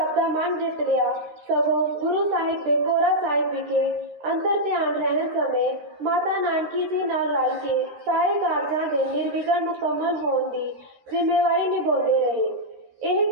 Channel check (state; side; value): late; left; 13 ms